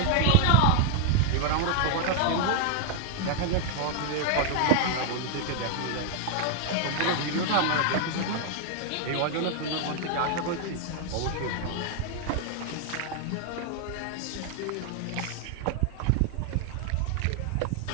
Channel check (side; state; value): both; different; correlation 0.00